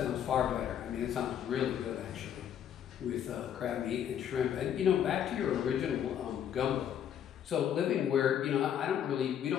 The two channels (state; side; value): quieter; right; 9.5 dB